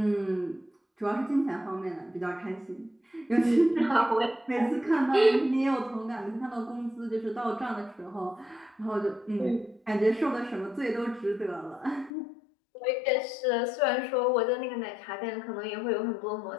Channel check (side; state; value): right; drops out; at 12.1 s